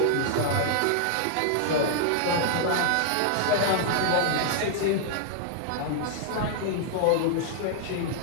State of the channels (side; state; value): both; different; correlation -0.01